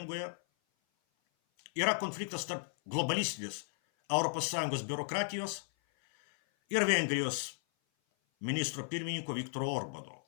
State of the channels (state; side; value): silent; right; 55 dB below the other